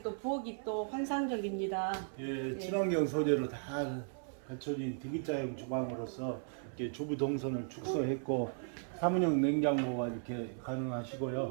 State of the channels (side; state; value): left; silent; 54 dB below the other